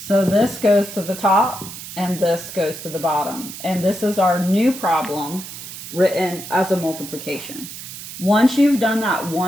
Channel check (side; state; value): right; noise; hiss, 11 dB below the sound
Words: this goes to the top, and this goes to the bottom. And this is our new problem written as a multiplication. Once you've done that